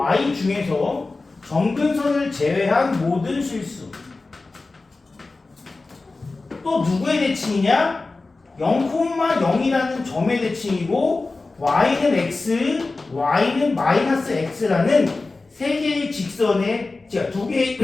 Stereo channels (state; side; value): quieter; right; 3.5 dB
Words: 중에서 점근선을 제외한 모든 실수. 또 누구의 대칭이냐? 0,0이라는 점의 대칭이고 y는 x, y는 마이너스 x라는 세 개의 직선의, 두 개의